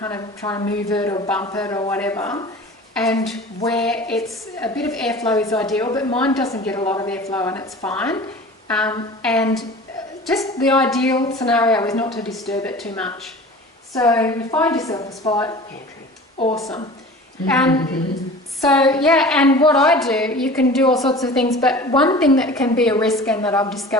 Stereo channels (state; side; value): normal; both; correlation 0.40